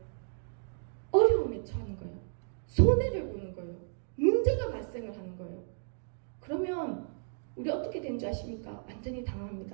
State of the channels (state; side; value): silent; left; digital silence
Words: 어려움에 처하는 거예요. 손해를 보는 거예요. 문제가 발생을 하는 거예요. 그러면 우리 어떻게 된 줄 아십니까? 완전히